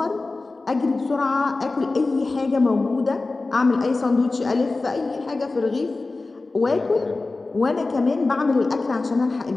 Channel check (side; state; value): right; quieter; 3.5 dB